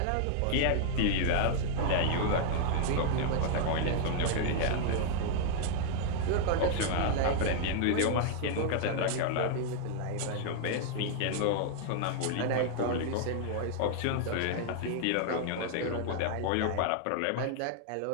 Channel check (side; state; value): both; different; correlation -0.01